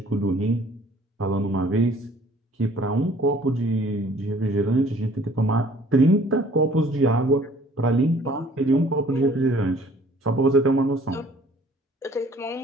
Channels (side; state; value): both; normal; correlation 0.55